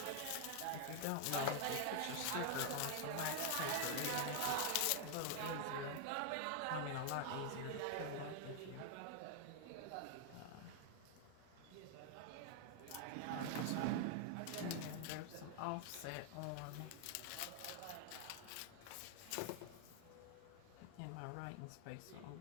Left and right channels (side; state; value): both; different; correlation 0.00